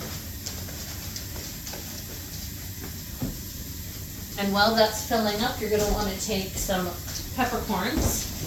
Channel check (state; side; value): identical; both; correlation 1.00